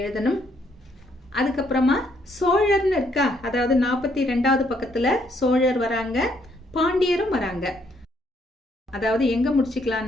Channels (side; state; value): both; normal; correlation 0.71